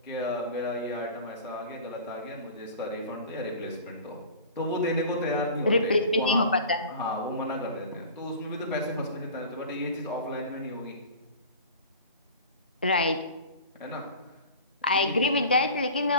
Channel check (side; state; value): both; inverted; correlation -0.39